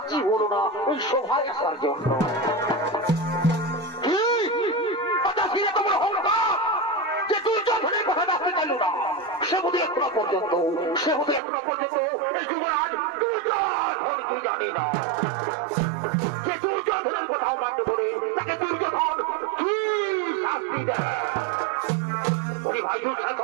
হলো না ওই সভায় আসার জন্য। যে দুর্যোধনের কথা আসতে চাইল না, সে বোধ এখনো পর্যন্ত এই যুবরাজ দুর্যোধনকে জানে না। যে দুর্যোধনের কথাও মানতে বলে তাকে দুর্যোধন কি শাস্তি দেয়? ভাই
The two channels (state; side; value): drops out; left; at 11.4 s